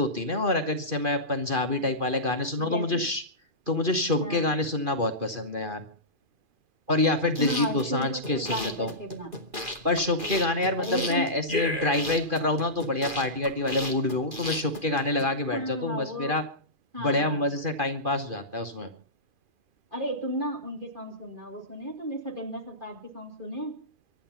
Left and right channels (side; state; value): left; late; 2.4 ms